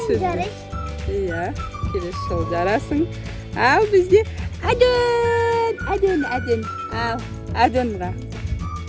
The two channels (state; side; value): identical; both; correlation 1.00